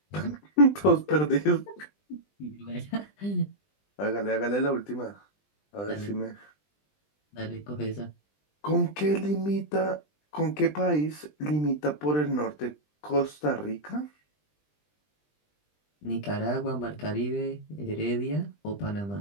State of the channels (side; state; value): right; late; 20 ms